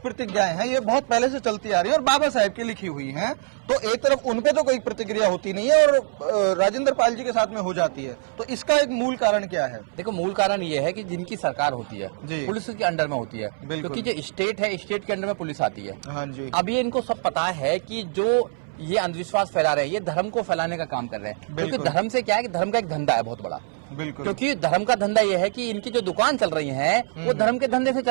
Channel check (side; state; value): left; silent; 60 dB below the other